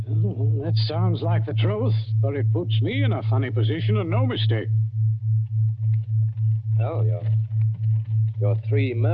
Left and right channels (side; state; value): both; identical; correlation 1.00